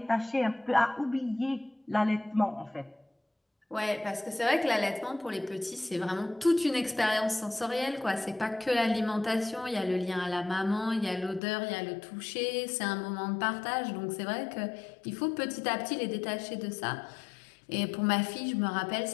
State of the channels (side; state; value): right; drops out; at 11.4 s